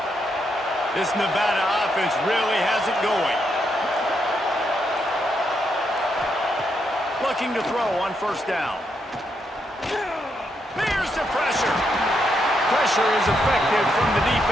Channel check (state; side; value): normal; both; correlation 0.79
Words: This Nevada offense really has it going. Looking to throw on first down. There's the pressure. Pressure is effective from the